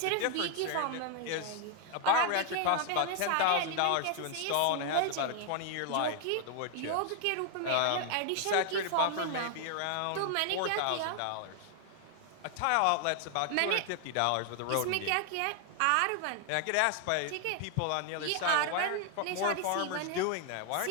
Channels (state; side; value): different; both; correlation 0.00